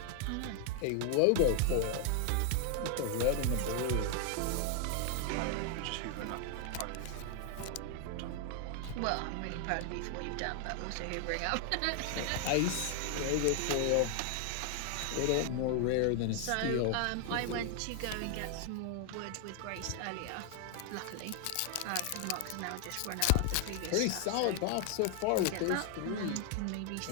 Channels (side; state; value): both; different; correlation 0.00